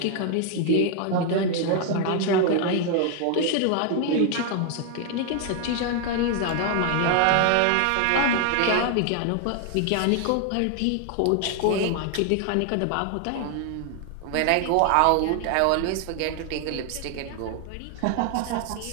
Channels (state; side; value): different; both; correlation 0.00